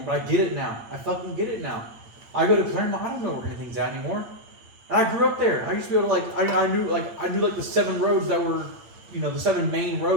But I get it now. I fucking get it now. I go to Claremont. I don't know where anything's at anymore. And I grew up there. I used to be able to I knew the 7 roads that were, the 7 main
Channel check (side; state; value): left; late; 8.8 ms